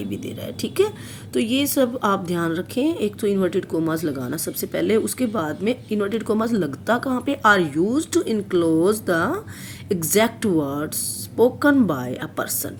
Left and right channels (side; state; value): both; identical; correlation 1.00